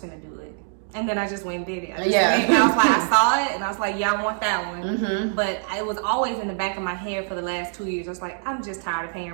gonna do it. And then I just went and did it. I was like, I saw it, and I was like, yeah, I want that one. Mm-hmm. But it was always in the back of my head for the last 2 years. I was like, I'm just tired of paying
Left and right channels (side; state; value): left; silent; digital silence